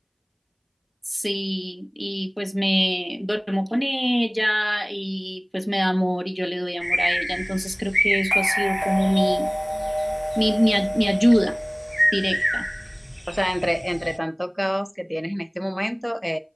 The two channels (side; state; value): both; identical; correlation 1.00